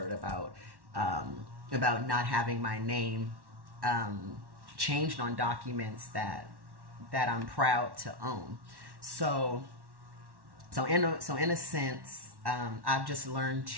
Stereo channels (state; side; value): late; left; 1.1 ms